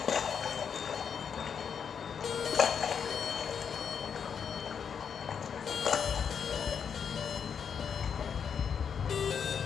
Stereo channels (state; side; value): quieter; right; 7.1 dB